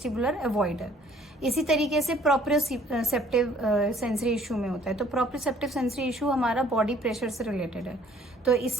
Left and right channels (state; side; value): normal; both; correlation 0.58